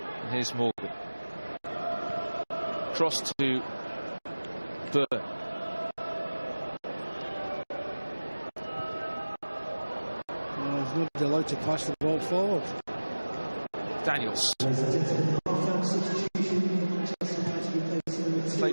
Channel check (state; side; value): inverted; both; correlation -1.00